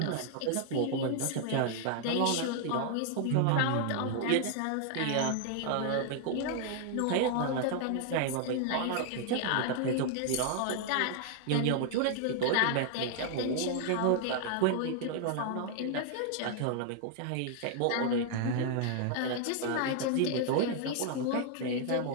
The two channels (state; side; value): different; both; correlation 0.00